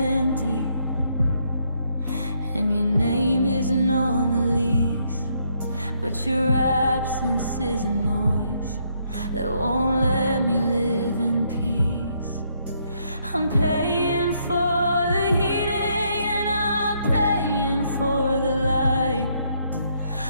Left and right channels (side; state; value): both; inverted; correlation -0.73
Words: and your name isn't on the lease, but your absence is a noise that won't let me live in peace. I'm paying for the heating and I'm paying for the light,